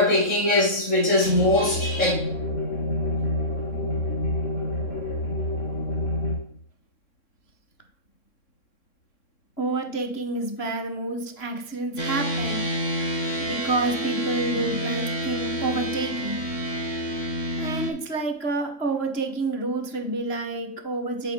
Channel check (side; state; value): right; late; 3.6 ms